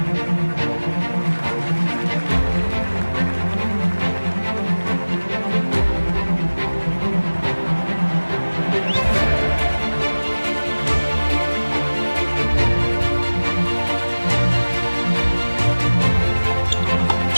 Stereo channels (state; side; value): inverted; both; correlation -1.00